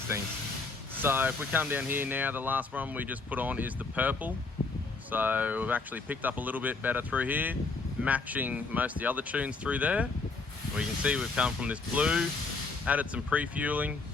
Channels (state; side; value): quieter; right; 3.9 dB